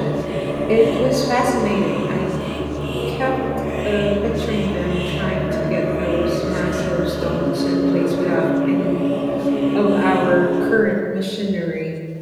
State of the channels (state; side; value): identical; both; correlation 1.00